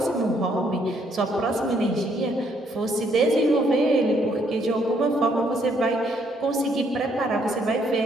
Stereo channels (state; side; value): normal; both; correlation 0.69